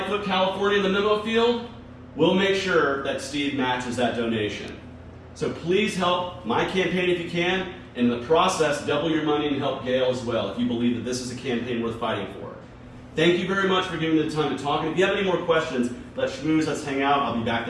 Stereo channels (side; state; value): both; identical; correlation 1.00